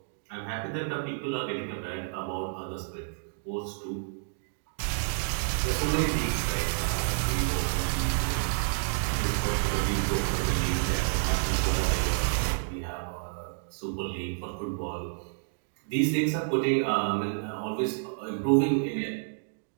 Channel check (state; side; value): silent; left; digital silence